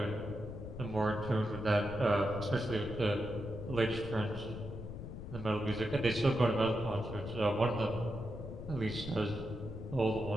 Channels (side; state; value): left; noise; rumble, 9 dB below the sound